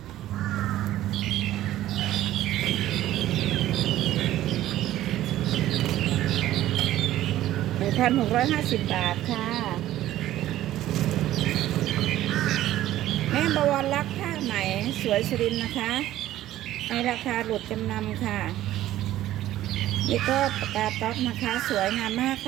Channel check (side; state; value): left; quieter; 13.9 dB